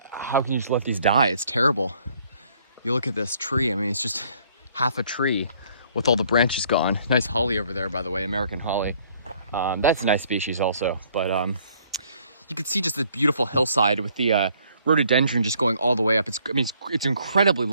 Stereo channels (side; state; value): both; inverted; correlation -0.62